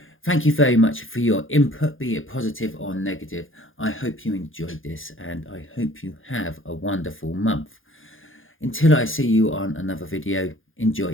thank you very much for your input, be it positive or negative. I hope you enjoyed this and I hope you have a wonderful month. Until I see you on another video, enjoy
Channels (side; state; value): right; late; 0.58 ms